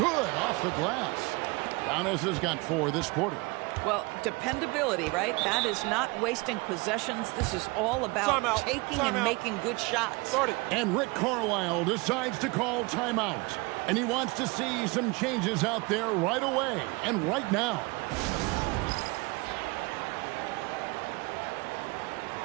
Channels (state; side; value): quieter; left; 26.3 dB